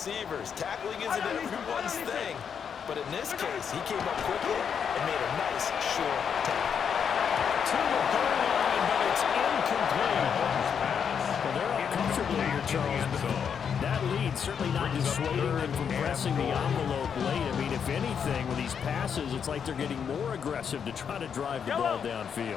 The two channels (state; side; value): quieter; right; 7.3 dB